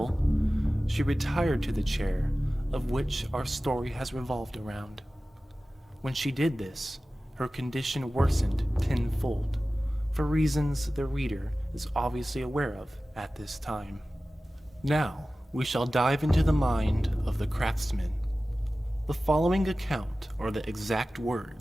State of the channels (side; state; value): both; normal; correlation 0.96